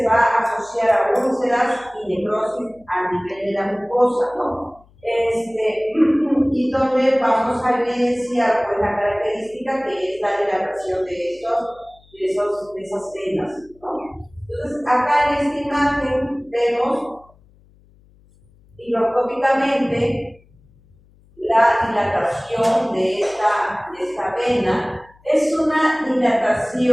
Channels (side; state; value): left; noise; hum, 29 dB below the sound